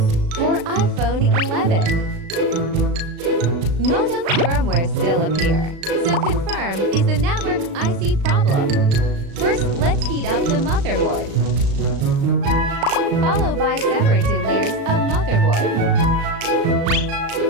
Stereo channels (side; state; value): left; late; 36 ms